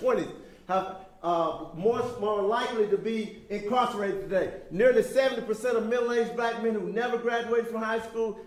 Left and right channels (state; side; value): identical; both; correlation 1.00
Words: have more likely to be incarcerated today. Nearly 70% of middle-aged black men who never graduated from high school